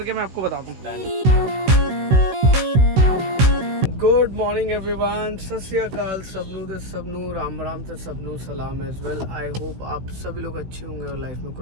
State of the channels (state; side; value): late; left; 16 ms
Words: मैं आपको बता दूँ। गुड मॉर्निंग एवरीवन, सत श्री अकाल सबनू ते सबनू, राम राम ते सबनू सलाम एज वेल। आई होप आप सभी लोग अच्छे होंगे और लाइफ में